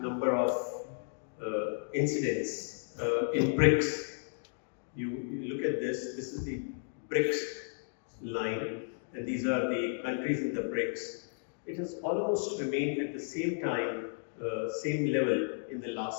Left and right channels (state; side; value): silent; right; digital silence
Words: number of incidents in BRICS. You look at this is the BRICS line, and these are the countries in the BRICS. It has almost remained at the same time, same level in the